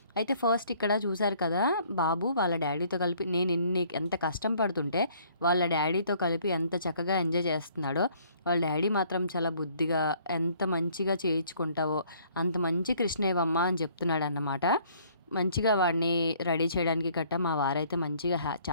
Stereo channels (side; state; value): both; inverted; correlation -0.60